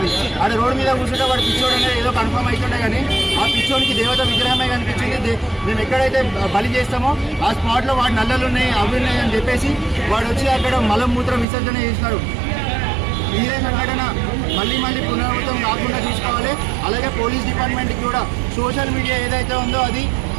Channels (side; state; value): left; drops out; at 11.5 s